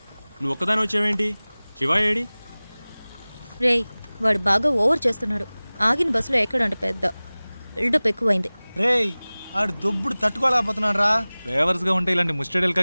నువ్వు ఒక్కదాని వచ్చావేంటి? శివ ఏడి? రేయ్, వాడు బాగా ఓవర్ చేస్తున్నాడు. ఆగిన బస్సులో ఎక్కడంట పెద్ద బిల్డప్ ఎక్కువైంది. రేయ్, ఆడు దొబ్బుడు తట్టుకోలేకపోతున్నాడు రా. డ్రైవర్స్గా ఉంటే ఇలాంటి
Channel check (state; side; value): inverted; both; correlation -1.00